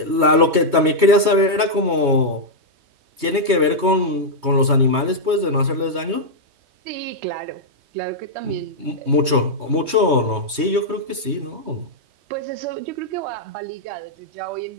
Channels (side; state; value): left; late; 3.2 ms